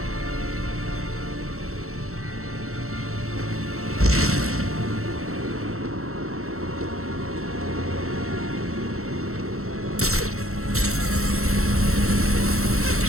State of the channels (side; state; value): left; late; 0.63 ms